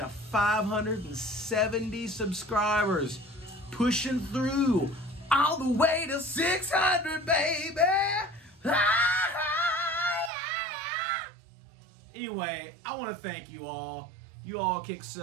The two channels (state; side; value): drops out; left; at 10.3 s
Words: 570 subscribers. Pushing through all the way to 600, baby. Anyway, I want to thank you all. You all kick